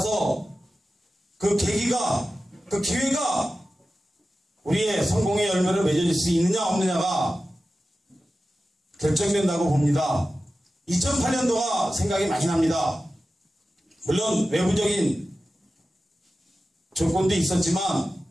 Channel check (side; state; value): both; normal; correlation 0.94